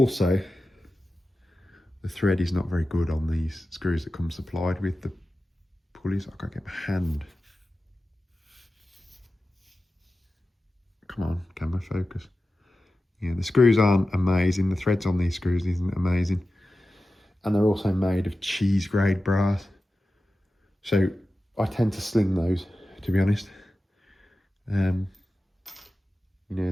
the thread is not very good on these screws that come supplied with the pulleys. I can't get my hand. Come on, camera focus. Yeah, the screws aren't amazing. The threads on these screws isn't amazing. And they're also made of cheese grade brass. So I tend to sling those, to be honest. You know,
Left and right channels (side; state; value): both; normal; correlation 0.94